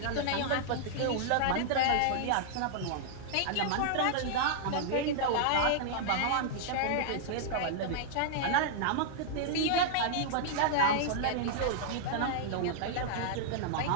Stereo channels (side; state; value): both; different; correlation -0.01